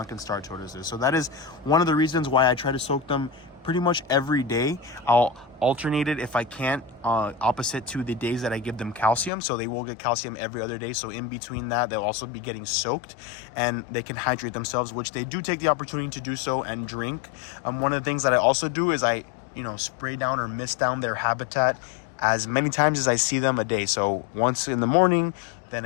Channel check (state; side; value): drops out; right; at 9.3 s